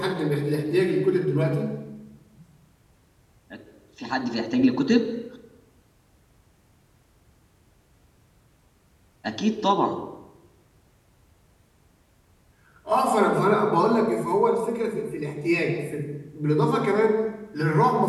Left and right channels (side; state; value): both; identical; correlation 1.00